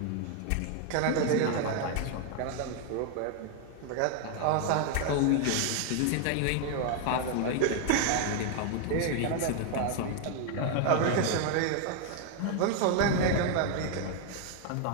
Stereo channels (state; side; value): different; both; correlation 0.00